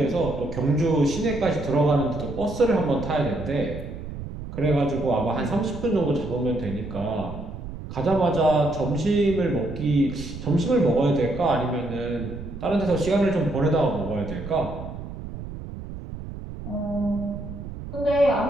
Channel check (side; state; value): right; noise; rumble, 10 dB below the sound